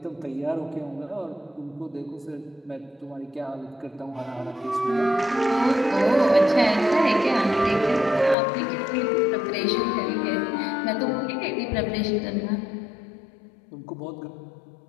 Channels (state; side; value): drops out; right; at 8.3 s